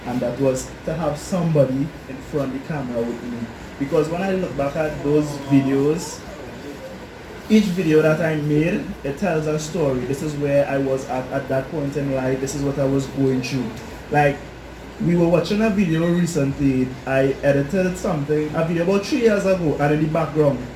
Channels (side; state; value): both; identical; correlation 1.00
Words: and that was to have somebody in front of the camera with me. Because when I look back at those videos, each video that I made, it tells a story. This is where I was at that point in life. This is what I was going through. Like, we were watching a video recently. I edited something, a video about 3 years ago, and in the background,